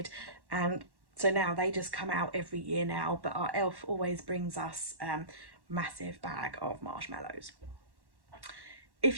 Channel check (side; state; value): left; late; 1.1 ms